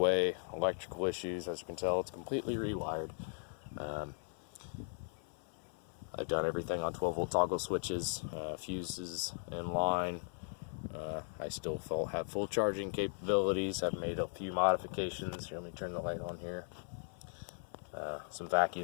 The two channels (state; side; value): silent; right; 52 dB below the other